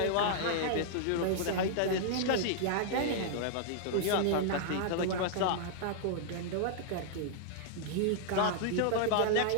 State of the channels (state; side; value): different; both; correlation -0.01